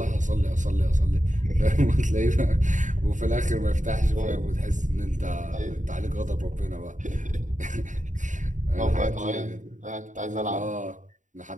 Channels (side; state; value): left; late; 0.36 ms